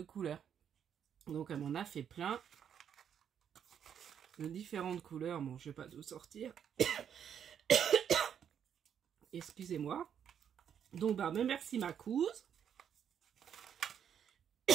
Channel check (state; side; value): quieter; left; 8.5 dB